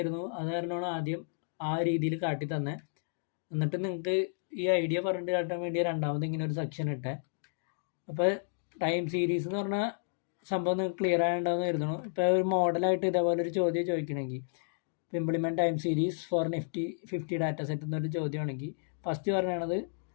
അത് കാരണമാണ് ആദ്യം ആ രീതിയിൽ കാട്ടി തന്നെ. എന്നിട്ട് നിങ്ങൾക്ക് ഈ ഐഡിയ പറഞ്ഞിട്ട് കാട്ടാൻ വേണ്ടി രണ്ടാമത് ഇങ്ങനെ ഒരു സെക്ഷൻ ഇട്ടേ. അപ്പോൾ ടൈം സീരീസ് എന്ന് പറഞ്ഞാൽ സംഭവം നിങ്ങൾക്ക് ക്ലിയർ ആയിട്ടുണ്ടാവുമെന്ന് കരുതുന്നു. ഇപ്പോൾ ഒരു മോഡലായിട്ട് ഇതേപോലെ ഒരു ചോദ്യം ചോദിക്കണമെങ്കിൽ, implement time series for Nifty 50 data set എന്നൊരു ചോദ്യമാണെങ്കിൽ ഫസ്റ്റ് പറയണത്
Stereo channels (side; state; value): right; silent; digital silence